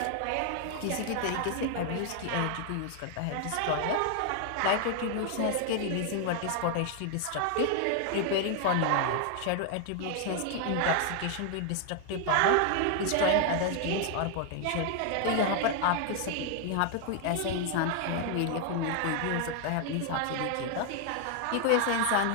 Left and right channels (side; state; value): both; different; correlation 0.00